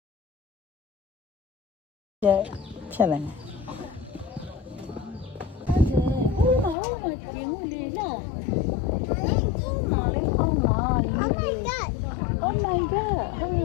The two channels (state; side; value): drops out; right; at 6.8 s